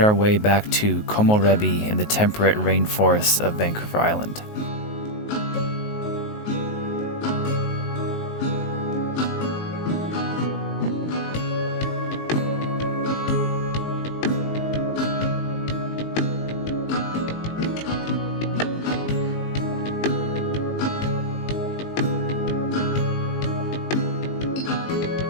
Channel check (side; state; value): right; late; 19 ms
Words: our way back to Komorebi in the temperate rainforests of Vancouver Island.